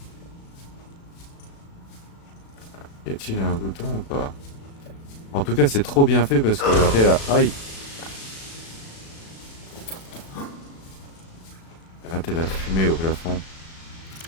Y a-t-il un bouton ou pas? En tout cas, c'est trop bien fait parce que regardez là. Aïe! Regardez la fumée au plafond.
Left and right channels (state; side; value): late; right; 36 ms